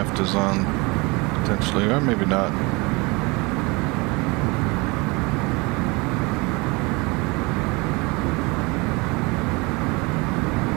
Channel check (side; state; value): left; quieter; 26.2 dB